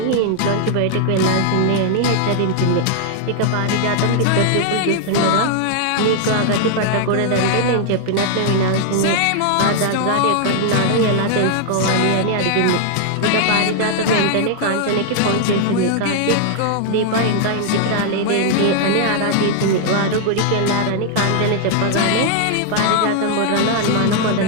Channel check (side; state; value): both; different; correlation 0.00